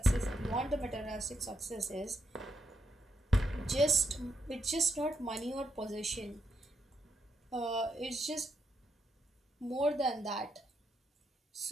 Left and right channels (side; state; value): both; normal; correlation 0.78